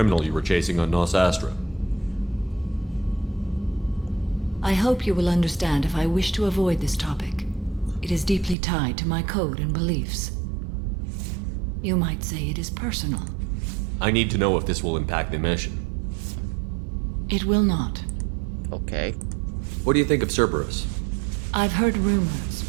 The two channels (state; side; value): drops out; left; at 8.6 s